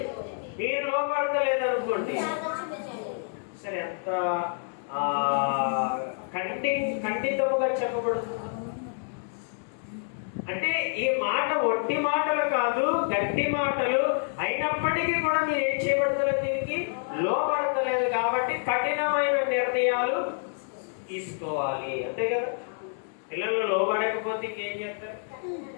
మీరు లోబడతలేదు అనుకోండి, సరే ఎంత ఖండితముగా చెప్పబడుతుంది. అంటే ఈ మాట ఒట్టి మాటలు కాదు, గట్టి మాటలు అయినప్పటికీ కూడా మీరు ఏం చేయబడతలేదు, దీనికి లోబడతలేదు. కాబట్టి కఠినమైన నిర్ణయాలు తీసుకోవాలి. అంతే కదా? పిల్లలు లోబడకపోతే ఇంకేం చెప్తారు?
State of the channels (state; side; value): silent; right; 59 dB below the other